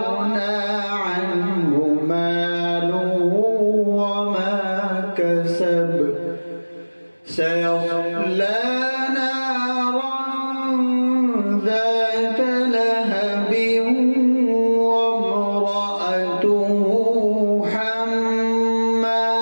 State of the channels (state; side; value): inverted; both; correlation -1.00